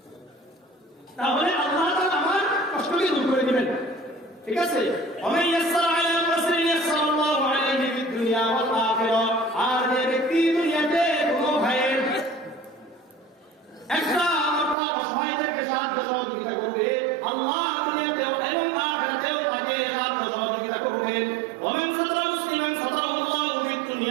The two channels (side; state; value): left; drops out; at 14.8 s